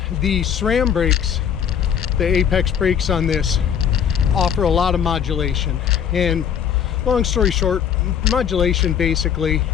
the SRAM brakes, the Apex brakes on this, offer a lot of modulation. And long story short, modulation basically,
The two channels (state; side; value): quieter; right; 8.4 dB